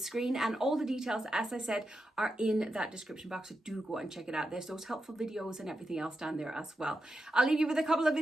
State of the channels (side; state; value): both; normal; correlation 0.88